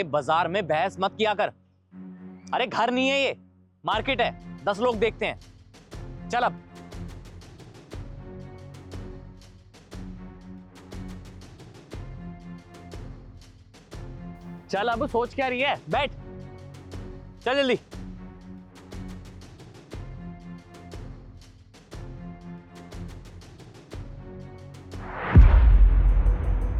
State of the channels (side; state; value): both; identical; correlation 1.00